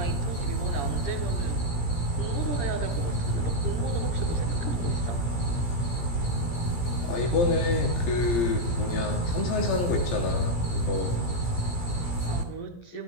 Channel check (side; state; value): right; late; 17 ms